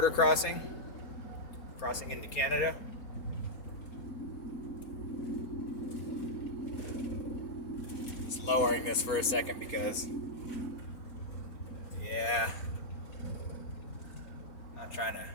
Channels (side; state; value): right; late; 4.3 ms